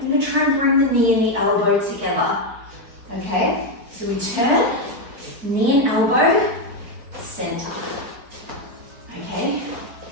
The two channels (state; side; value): late; left; 4.8 ms